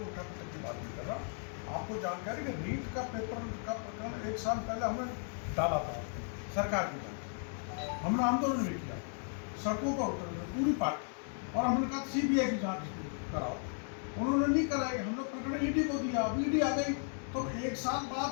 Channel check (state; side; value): silent; right; 54 dB below the other